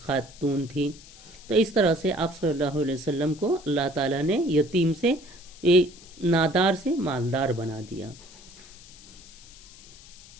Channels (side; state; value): left; noise; hiss, 20 dB below the sound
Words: خاتون تھی۔ تو اس طرح سے آپ صلی اللہ علیہ وسلم کو اللہ تعالیٰ نے یتیم سے، نادار سے مالدار بنا دیا۔